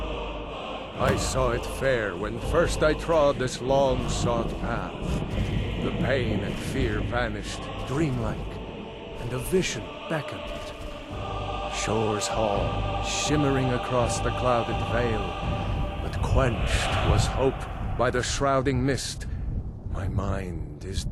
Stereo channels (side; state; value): both; identical; correlation 1.00